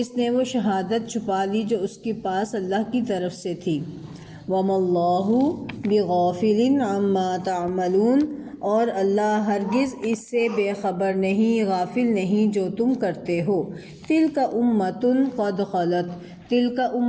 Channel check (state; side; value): identical; both; correlation 1.00